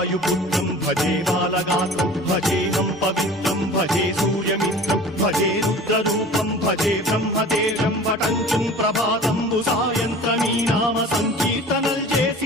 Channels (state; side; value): normal; both; correlation 0.42